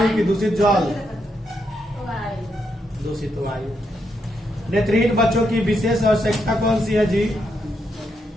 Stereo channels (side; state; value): both; normal; correlation 0.80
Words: की दूषित जल, दूषित वायु। नेत्रहीन बच्चों की विशेष आवश्यकता कौन सी है जी?